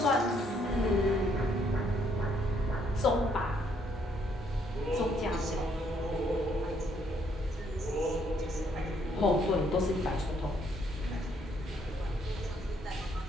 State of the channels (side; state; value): both; normal; correlation 0.69